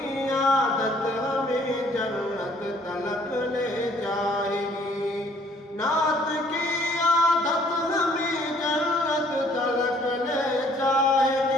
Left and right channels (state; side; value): normal; both; correlation 0.60